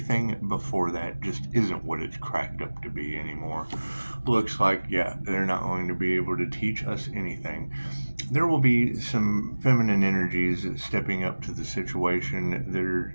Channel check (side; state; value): both; inverted; correlation -1.00